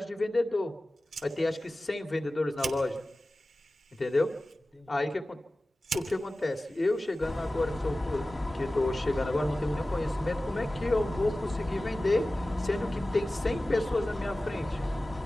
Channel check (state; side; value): normal; both; correlation 0.96